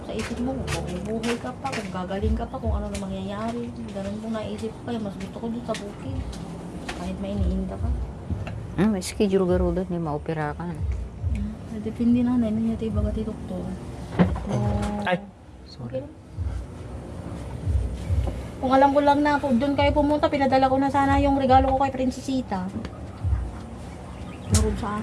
sa isip mo, kung bubuhay ka pa, kung gagaling ka pa, kung ano na mangyayari. Ganun pong naisip ko, kaya mas gusto ko dito sa bukid. Kahit may iniinda ka. May schedule garo doon, hindi maopera ka. Depende na, nainin niya tayo baga tayo doktor. Ay, sorry. Kung alam ko lang na doon kayo pumunta, pinadala ko na sana yung regalo ko kay Princesita. Meron sa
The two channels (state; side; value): identical; both; correlation 1.00